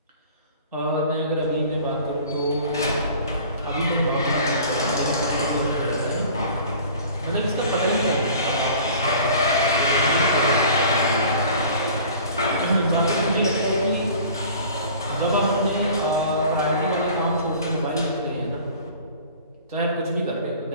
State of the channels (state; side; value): inverted; both; correlation -0.46